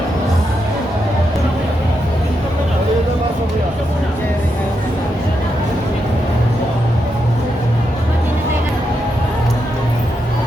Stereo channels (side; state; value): both; normal; correlation 0.83